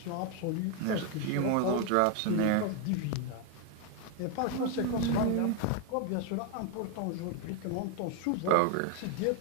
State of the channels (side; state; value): both; different; correlation 0.01